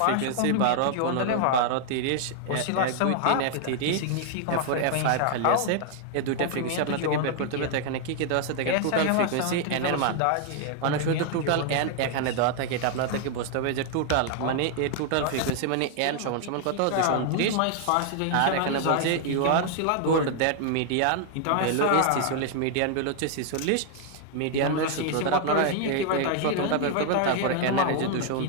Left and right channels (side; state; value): both; different; correlation 0.00